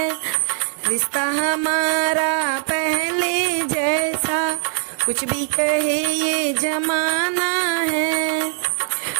रिश्ता हमारा पहले जैसा कुछ भी कहे ये जमाना है।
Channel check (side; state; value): left; silent; 62 dB below the other